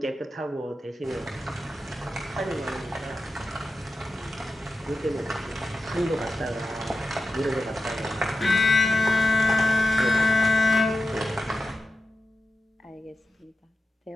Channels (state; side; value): normal; both; correlation 0.91